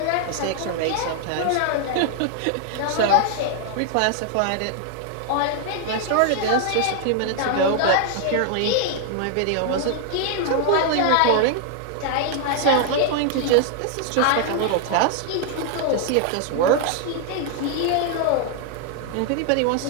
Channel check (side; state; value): both; different; correlation 0.00